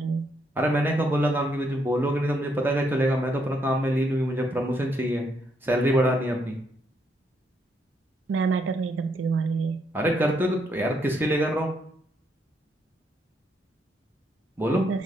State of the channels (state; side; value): normal; both; correlation 0.75